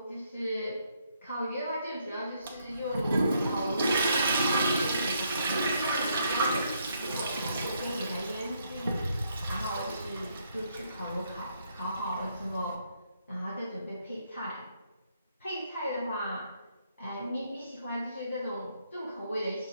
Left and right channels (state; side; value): inverted; both; correlation -0.73